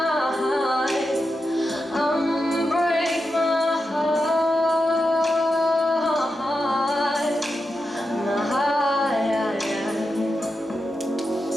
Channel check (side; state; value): both; normal; correlation 0.88